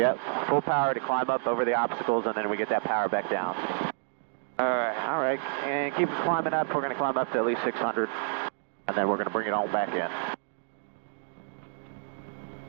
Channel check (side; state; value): left; silent; digital silence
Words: full power to climb up over the obstacles, and then we get that power back down. All right, and keep climbing up. We're going to climb up to at least 600, and then we're going to bring it all back in.